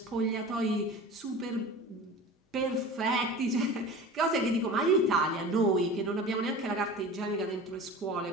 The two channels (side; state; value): both; normal; correlation 0.36